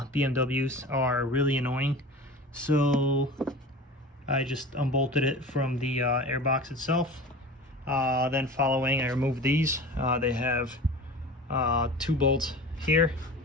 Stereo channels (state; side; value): normal; both; correlation 0.36